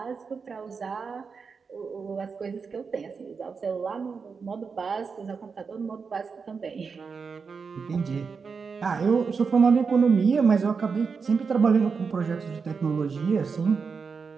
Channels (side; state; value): left; quieter; 5.3 dB